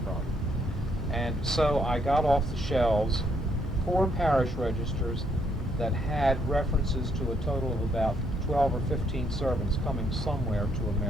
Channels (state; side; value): normal; both; correlation 0.72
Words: from. And so I got off the shelves 4 parish registers that had references to a total of about 12 or 15 servants coming somewhere to